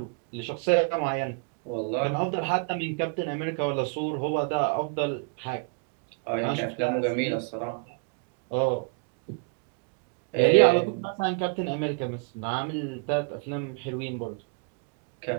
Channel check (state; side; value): quieter; left; 36.7 dB